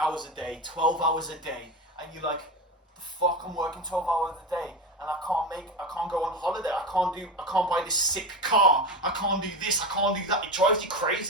a day, 12 hours a day, and you're like, the fuck, I'm working 12 hours a day, and I can't go on holiday. I can't buy this sick car. I can't do this. I can't do that. It drives you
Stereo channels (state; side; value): normal; both; correlation 0.21